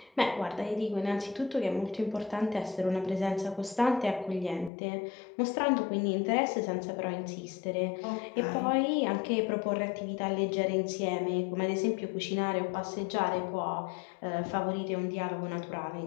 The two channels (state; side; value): drops out; right; at 4.7 s